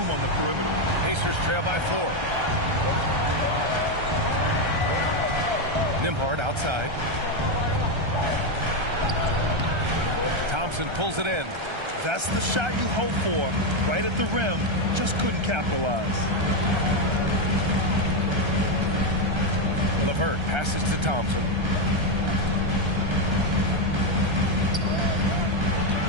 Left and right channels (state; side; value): late; left; 1.3 ms